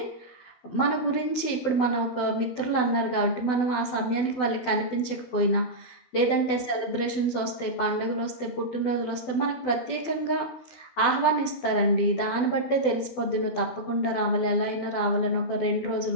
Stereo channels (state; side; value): late; right; 12 ms